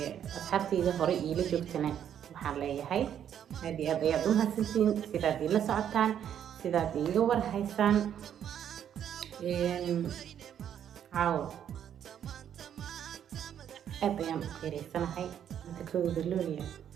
asxaabtayda hore ila joogtana waxaan leeyahay aad ayaad u mahadsantiin sidaad ila socotaan sidaad iga war haysaan caawa aad ayaan u qiireysanahay inta kooda looliya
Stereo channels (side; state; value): left; quieter; 9.5 dB